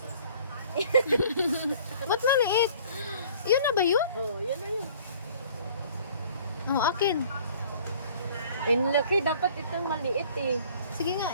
Ba't maliit? Yun na ba yun? Oh, yun na yun. Oh, akin. Laki, dapat itong maliit eh. Sige nga,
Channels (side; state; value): both; inverted; correlation -0.53